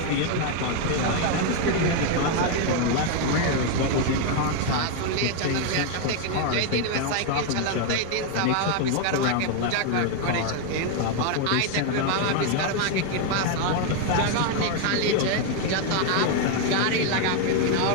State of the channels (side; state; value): both; different; correlation 0.01